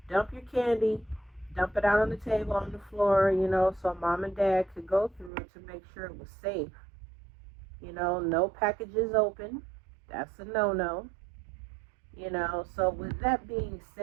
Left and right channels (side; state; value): left; drops out; at 5.3 s